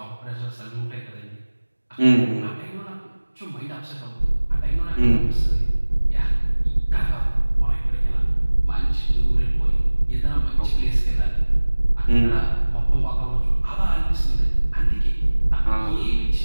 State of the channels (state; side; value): inverted; both; correlation -1.00